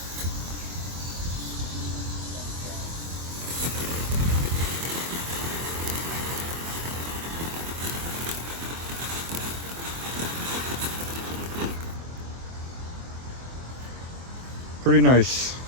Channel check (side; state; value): left; late; 24 ms